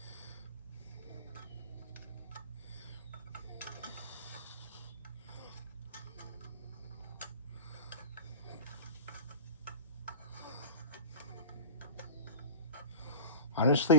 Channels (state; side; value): inverted; both; correlation -0.32